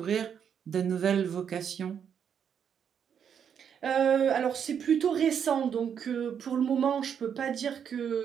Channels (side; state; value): left; quieter; 7.9 dB